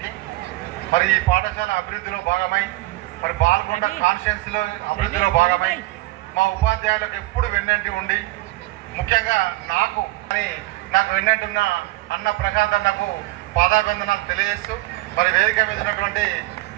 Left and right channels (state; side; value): quieter; left; 19.3 dB